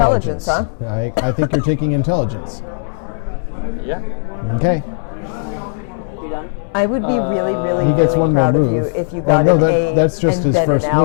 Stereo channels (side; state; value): right; silent; 66 dB below the other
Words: huh? I think you're taking intelligence. Yeah. Okay. You done? I would be really, really, He gets really one proud more of you move. if you got Oh, an no, A that's just and his then an first